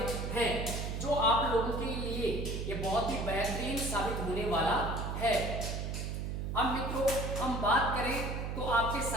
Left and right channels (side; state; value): right; noise; hum, 3 dB below the sound